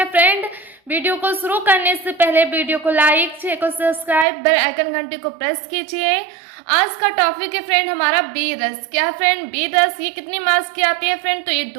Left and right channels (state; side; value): drops out; left; at 4.2 s